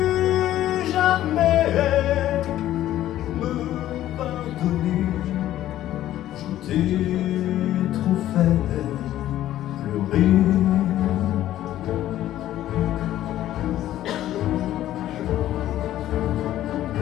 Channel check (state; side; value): quieter; right; 13.2 dB